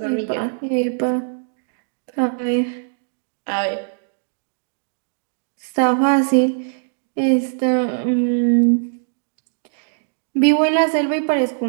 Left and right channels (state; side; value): silent; left; digital silence